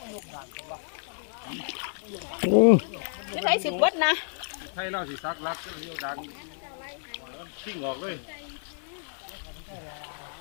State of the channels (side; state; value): right; silent; digital silence